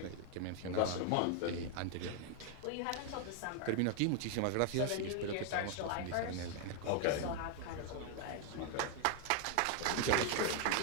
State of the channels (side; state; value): both; different; correlation 0.00